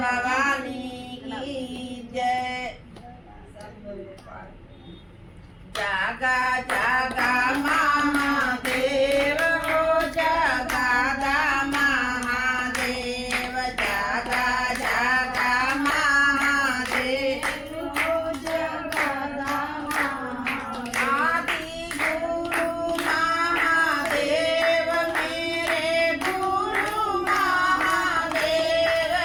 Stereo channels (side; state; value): both; identical; correlation 1.00